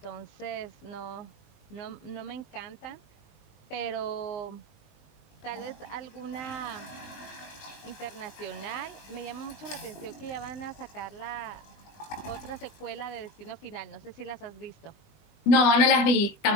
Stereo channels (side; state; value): right; late; 20 ms